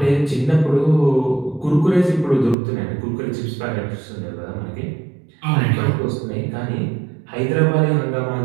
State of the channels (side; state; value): left; drops out; at 2.6 s